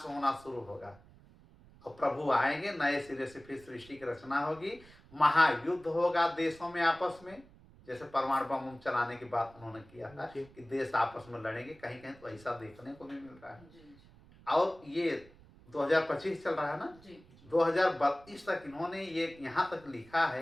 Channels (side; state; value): right; noise; rumble, 24 dB below the sound